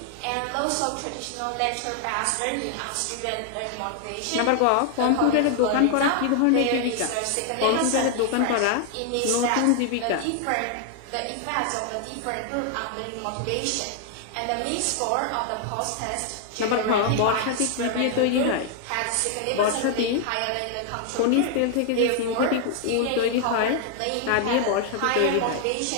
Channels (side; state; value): both; different; correlation 0.00